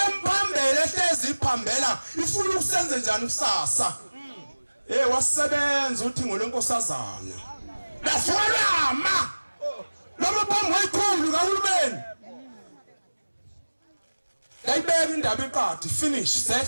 ehlezi iphambela ifuna ukusenze njani kusasa wasebenza uthi ngolenkosazana lafolama noma phambi kwayikhulu kahulumeni yayibeka indaba iqadi finish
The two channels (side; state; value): both; inverted; correlation -1.00